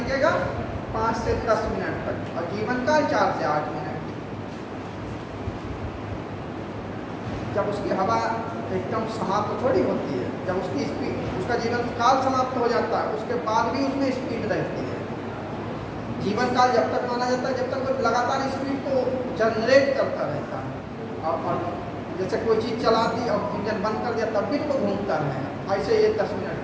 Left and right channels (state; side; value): identical; both; correlation 1.00